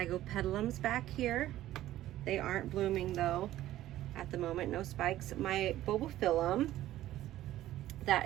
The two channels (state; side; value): quieter; left; 14.1 dB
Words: back here. They aren't blooming though at the moment, no spikes. My bulbophyllum,